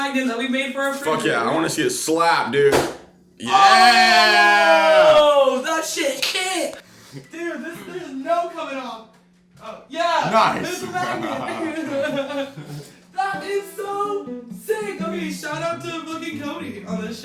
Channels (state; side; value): identical; both; correlation 1.00